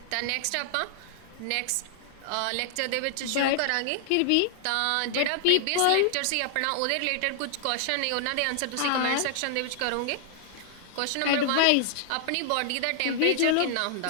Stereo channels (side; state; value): both; different; correlation -0.01